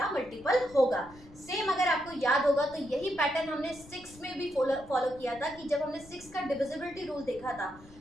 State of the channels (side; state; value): left; noise; rumble, 21 dB below the sound